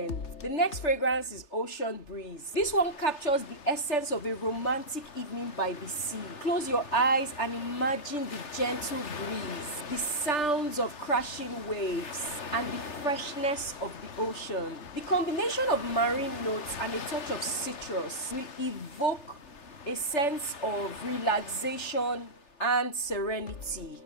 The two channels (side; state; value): right; late; 3.3 ms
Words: The next fragrance is Ocean Breeze. This one captures the essence of a romantic evening by the sea. Close your eyes and imagine the gentle breeze, the sounds of crashing waves, and the freshness of the ocean. The combination of marine notes and a touch of citrus will evoke a sense of relaxation and serenity,